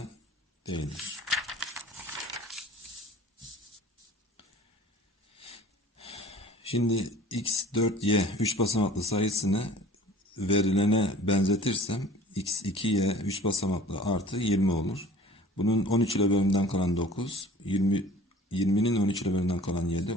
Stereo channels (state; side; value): normal; both; correlation 0.46